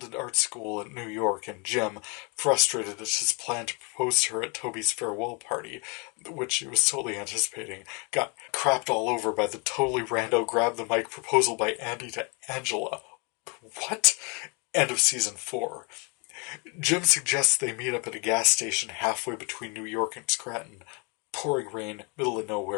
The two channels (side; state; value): right; quieter; 32.3 dB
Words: in art school in New York, and Jim, frustrated at his plan to propose to her at Toby's farewell party, which he was totally anticipating, got crapped all over by the totally rando grab the mic proposal by Andy to Angela. What? End of season 4. Jim suggests they meet up at a gas station halfway between New York and Scranton. Pouring rain, middle of